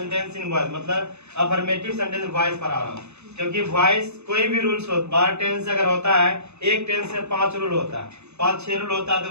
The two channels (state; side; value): late; left; 0.81 ms